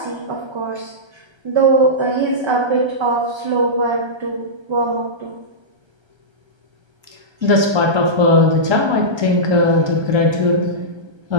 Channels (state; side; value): late; left; 1.3 ms